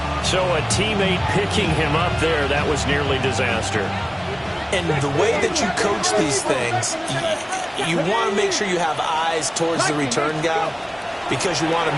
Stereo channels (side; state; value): both; identical; correlation 1.00